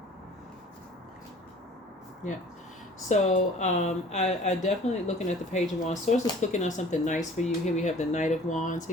Yeah. So I definitely looking at the Page of Wands. Source is cooking on something nice for you. Here we have the Knight of Wands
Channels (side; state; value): both; normal; correlation 0.50